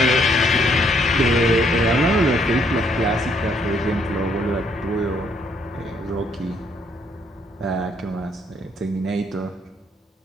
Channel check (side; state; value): both; normal; correlation 0.69